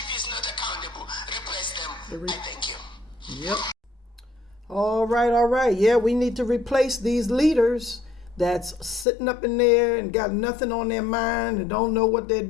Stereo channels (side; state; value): right; drops out; at 9.1 s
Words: is not accountable, replace them. I thank you. Yep. All right. Yeah, we need to replace these leaders that's sitting up in there and got nothing on their mind and don't know what they're